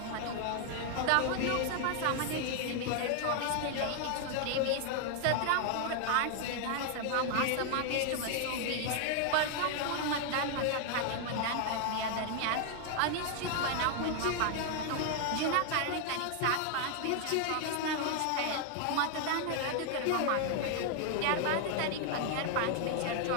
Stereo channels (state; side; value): different; both; correlation 0.00